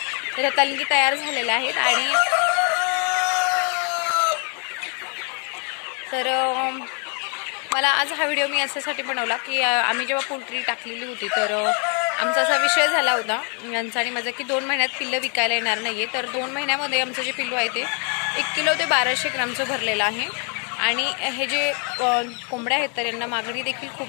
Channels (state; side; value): quieter; right; 39.4 dB